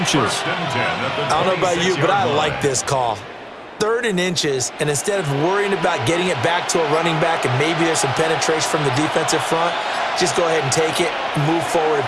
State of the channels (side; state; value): both; identical; correlation 1.00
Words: I don't know about you, but I like this call. 3rd and inches, and instead of worrying about getting it back to a running back and maybe there's some penetration from the defensive front, just go ahead and take it, move forward, and